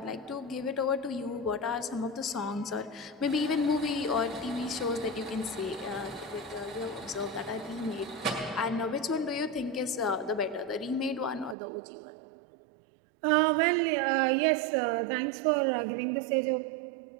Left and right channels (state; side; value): drops out; left; at 11.6 s